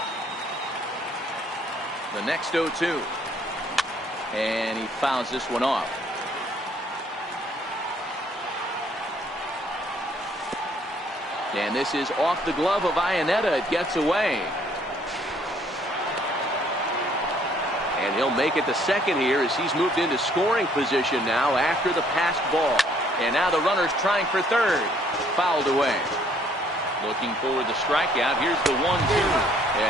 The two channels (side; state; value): both; normal; correlation 0.63